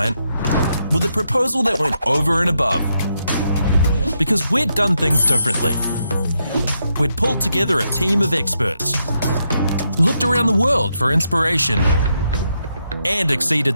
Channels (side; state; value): both; inverted; correlation -0.81